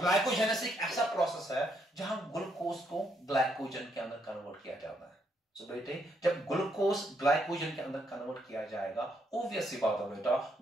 एक ऐसा process है जहां ग्लूकोज को ग्लाइकोजन के अंदर कन्वर्ट किया जाता है. So बेटे, जब ग्लूकोज ग्लाइकोजन के अंदर कन्वर्ट किया जाएगा, obvious सी बात है बेटा,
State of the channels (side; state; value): both; normal; correlation 0.75